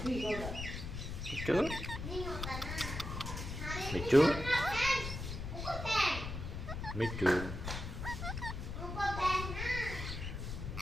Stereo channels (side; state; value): left; noise; rumble, 6 dB below the sound